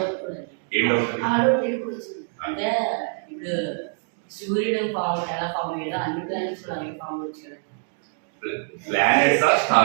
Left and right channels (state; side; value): silent; left; 62 dB below the other